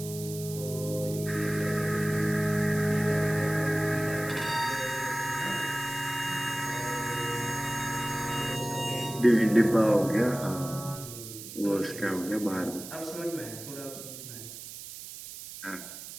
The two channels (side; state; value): right; noise; hiss, 12 dB below the sound